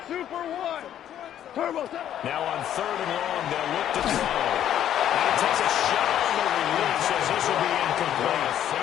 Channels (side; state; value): right; quieter; 10.8 dB